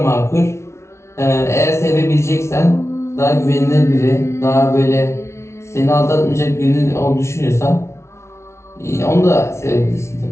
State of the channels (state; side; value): late; right; 0.13 ms